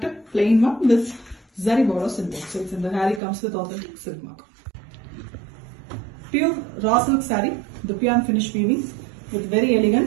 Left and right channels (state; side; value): drops out; left; at 3.2 s